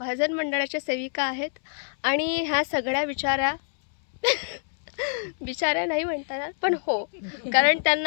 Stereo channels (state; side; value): silent; right; 61 dB below the other